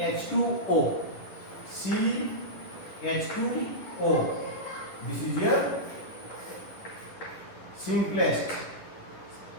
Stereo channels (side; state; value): right; late; 10 ms